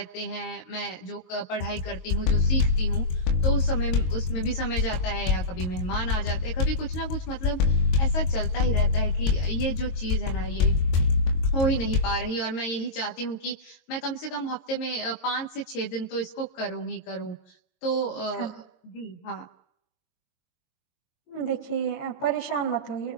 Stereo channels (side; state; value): right; late; 23 ms